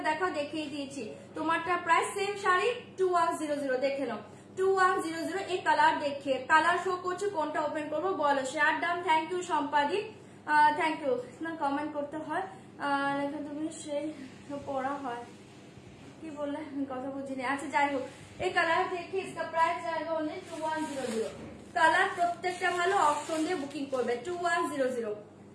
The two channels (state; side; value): identical; both; correlation 1.00